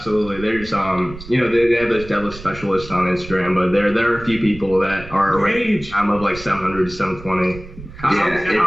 There's you know, they have those deadlift specialists on Instagram, but there are a few people that are I'm of like 700 to 720.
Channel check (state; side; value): noise; right; rumble, 15 dB below the sound